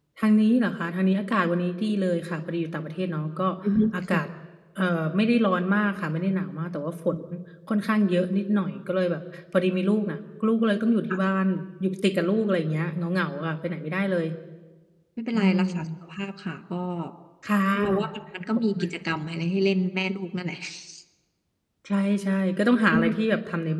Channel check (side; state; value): both; identical; correlation 1.00